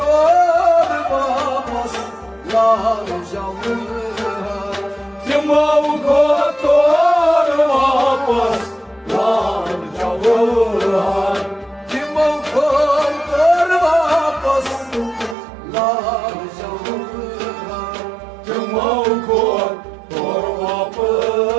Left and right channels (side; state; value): left; drops out; at 15.4 s